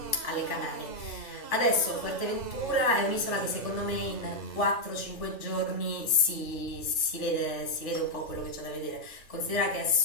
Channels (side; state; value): right; late; 3.4 ms